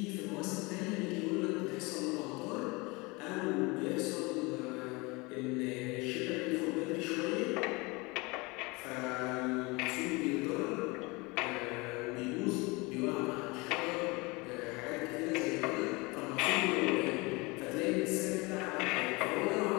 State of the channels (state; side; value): quieter; right; 25.6 dB